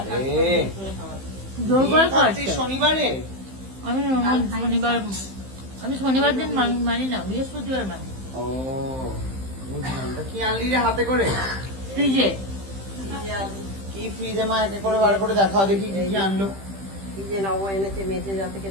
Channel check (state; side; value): late; left; 15 ms